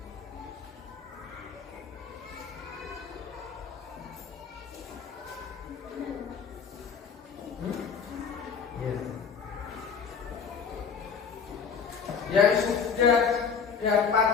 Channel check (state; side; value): quieter; right; 6.2 dB